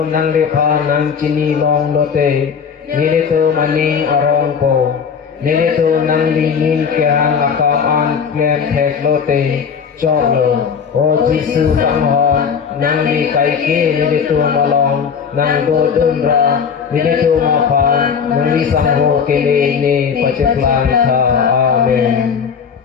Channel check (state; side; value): quieter; right; 6.7 dB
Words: nang lipa nang cinilong lote nilito maning arongko nilito nang lingin kehang akam an klem tek lote choklo O Jesu kanghong nang li kaike nilito malong nang dodunra nilito mapan nang li sangho kele ni paceklan ka amen